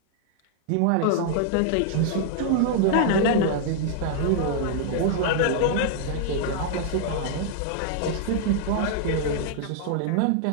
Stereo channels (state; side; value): different; both; correlation -0.01